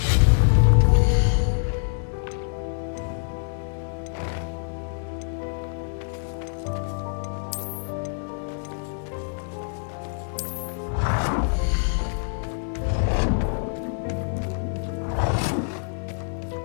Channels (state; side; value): silent; right; digital silence